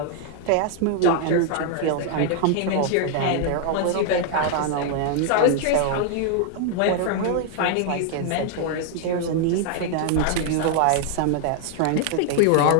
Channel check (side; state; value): both; different; correlation 0.00